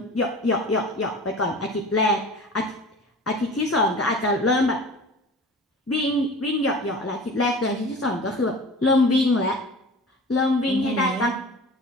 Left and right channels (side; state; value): both; normal; correlation 0.39